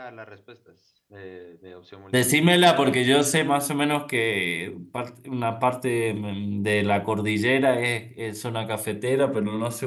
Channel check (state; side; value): identical; both; correlation 1.00